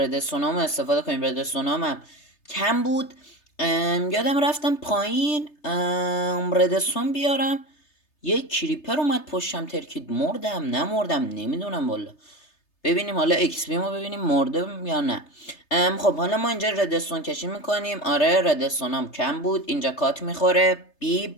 استفاده کنیم. ردستونام هم کم بود، یادم رفتم پایین ردستون بیارم، یه کریپر اومد پشتم ترکید. مردم نمردم نمیدونم والا. ببینیم حالا ایکس پی ما ببینیم مرده یا نه. خب حالا ما اینجا ردستون کشی میکنیم. آره ردستونام کم بود. اینجا کات میخوره.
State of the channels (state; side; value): late; right; 3.3 ms